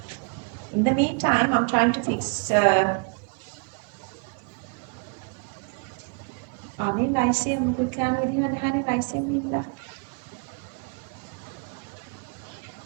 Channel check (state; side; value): quieter; left; 36.5 dB